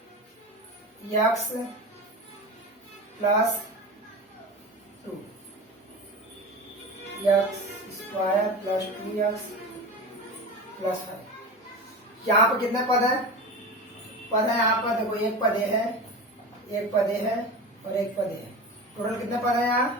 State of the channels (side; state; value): both; normal; correlation 0.28